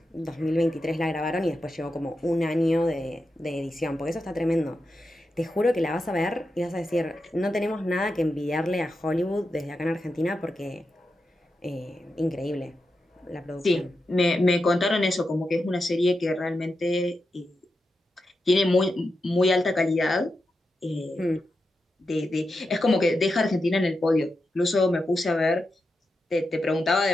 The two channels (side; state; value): both; normal; correlation 0.88